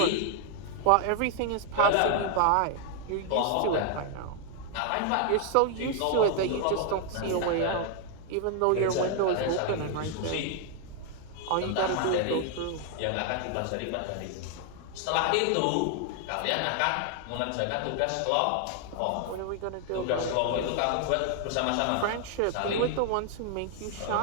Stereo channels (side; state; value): both; different; correlation 0.00